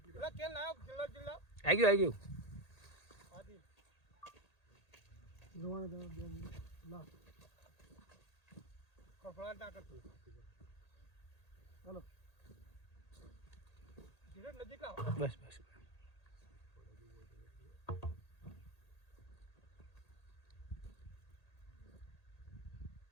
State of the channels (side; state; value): right; late; 1.8 ms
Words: ગયું કેન લાવ જિલ્લા આવી ગયું આદિલ જોવાને તો લા કફળા ના કરતું હાલો ધીરે નજીક લાવ બસ બસ